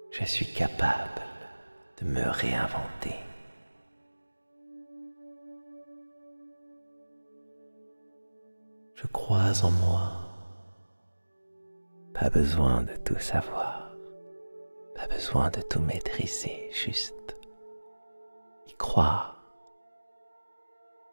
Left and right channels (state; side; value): inverted; both; correlation -1.00